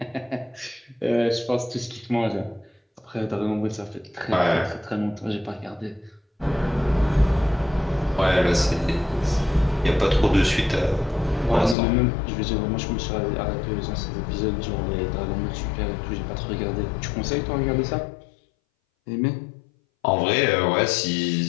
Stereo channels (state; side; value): drops out; right; at 11.8 s